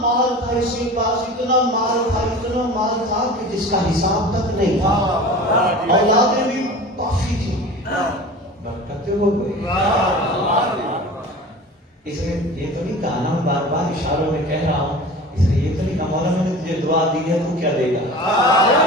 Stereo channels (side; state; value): both; normal; correlation 0.37